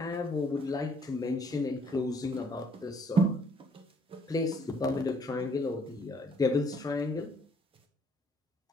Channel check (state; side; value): normal; both; correlation 0.64